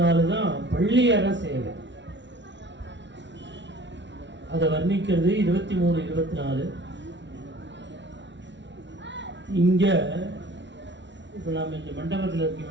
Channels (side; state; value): left; late; 0.52 ms